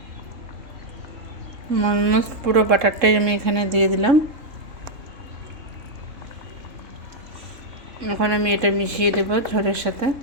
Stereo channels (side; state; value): left; late; 3.7 ms